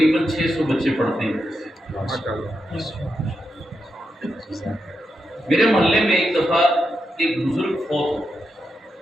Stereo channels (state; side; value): normal; both; correlation 0.86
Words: 600 بچے پڑھتے ہیں۔ میرے محلے میں ایک دفعہ ایک بزرگ فوت ہو،